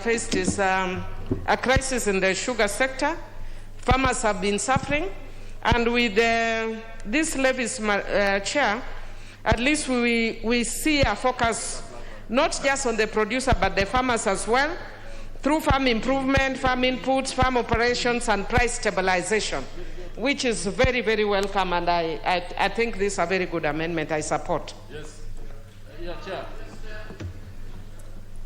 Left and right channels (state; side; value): identical; both; correlation 1.00